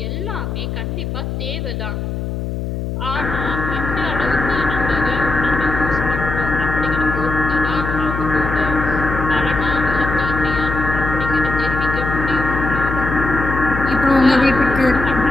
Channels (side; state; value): left; noise; hum, 4 dB below the sound